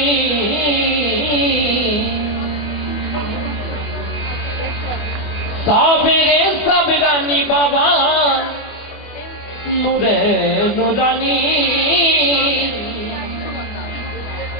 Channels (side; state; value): right; late; 24 ms